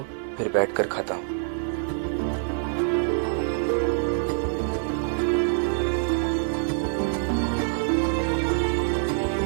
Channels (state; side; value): silent; left; digital silence